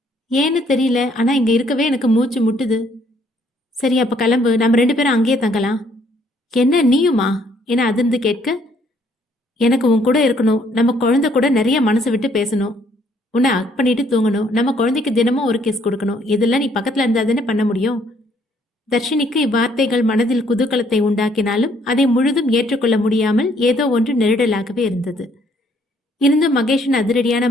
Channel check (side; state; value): both; normal; correlation 0.66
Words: ஏன்னு தெரியல, ஆனால் இங்கே இருக்கவே எனக்கு மூச்சு முட்டுது. சரி, அப்போ கிளம்பு, நம்ம 2 பேரும் அங்கேயே தங்கலாம். என்ன நீயுமா என அதிர்ந்து கேட்க, எனக்கு உன் கூட இருக்கணும். நம்ம குழந்தை கூட நிறைய மனசு விட்டு பேசணும். உன்னை அக் பண்ணிட்டு தூங்கணும். நம்ம குழந்தைக்கு தினமும் ஒரு கிஸ் கொடுக்கணும். இதெல்லாம் நீ பக்கத்தில் இருந்தால் தானே பண்ண முடியும். தர்ஷினிக்கு இவ்வார்த்தைகள் மனதில் குதூகலத்தை உண்டாக்கினாலும் அதை முழுதும் ஏற்றுக்கொள்ள முடியாமல் ஏதோ ஒன்று நெருடலாகவே இருந்தது. இருந்தும் மகேஷின் அதிரடியான